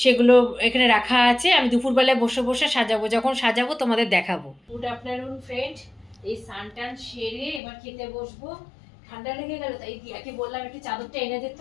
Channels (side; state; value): right; drops out; at 7.6 s